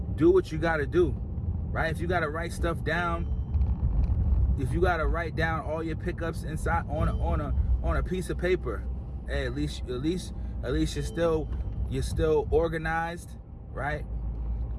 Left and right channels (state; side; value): identical; both; correlation 1.00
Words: Do what you got to do, right? If you got to write stuff down, if you got to write down all your pickups inside on a piece of paper, hey, at least you're still organized, right?